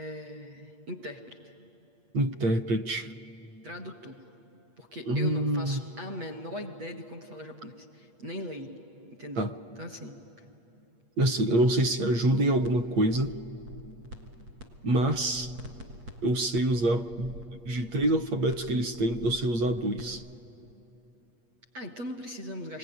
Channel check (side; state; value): left; late; 8.4 ms